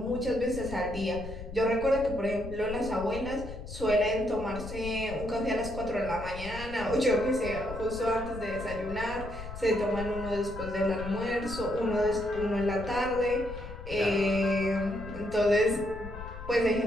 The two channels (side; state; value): left; noise; rumble, 11 dB below the sound